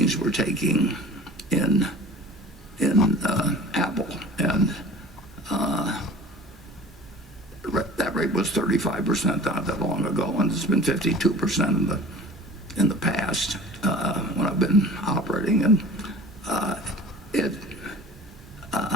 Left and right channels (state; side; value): normal; both; correlation 0.42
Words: we're taking in Apple, and that rate was 35% not that long ago, and it's been 52% in the past when I've been operating. And